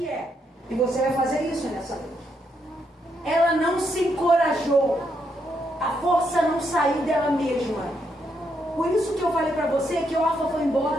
é, e você vai fazer isso nessa noite, ela não se encorajou, a força não saiu dela mesma. Por isso que eu falei para você que Orfa foi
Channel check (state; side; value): normal; both; correlation 0.78